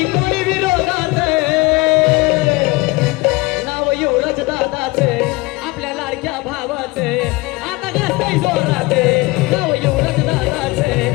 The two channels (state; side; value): quieter; right; 23.0 dB